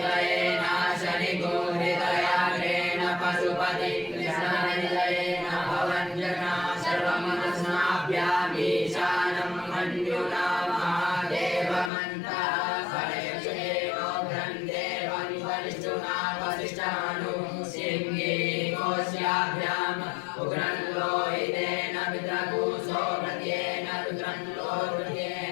नाशनिगोहृतयाग्रेण पशुपति कृष्णहृदयेन भवञ्जना सर्वमनस्नाभ्यामीशानं मन्युना महादेवमन्तः फलयक्षेणो ग्रन्थेवं वरिष्ठुना वसिष्ठानु सिंहे कोश्याभ्याम् उग्रं लोहितेन विद्रकूसो प्रत्येन रुद्रं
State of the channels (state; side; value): drops out; right; at 11.9 s